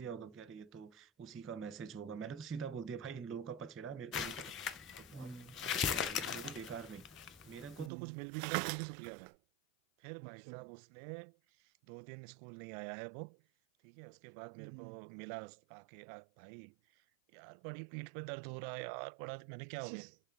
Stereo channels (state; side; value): drops out; left; at 7.9 s